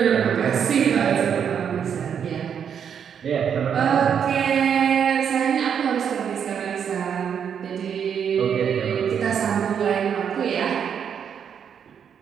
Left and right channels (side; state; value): left; quieter; 7.8 dB